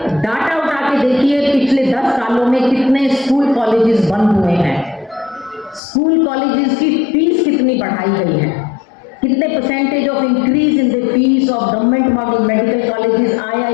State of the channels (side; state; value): right; drops out; at 5.8 s